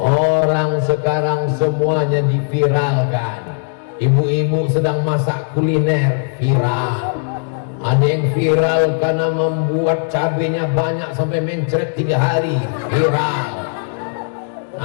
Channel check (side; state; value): right; silent; digital silence